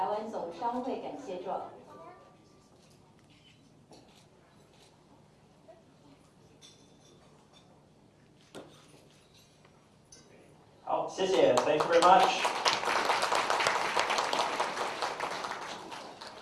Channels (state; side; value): identical; both; correlation 1.00